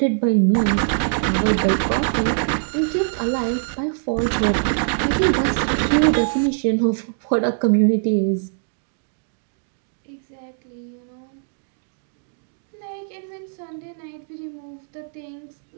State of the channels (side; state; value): left; silent; digital silence